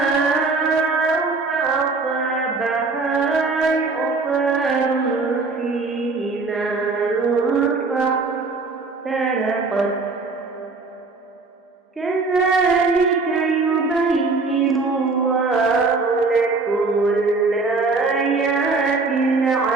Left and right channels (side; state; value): left; quieter; 4.0 dB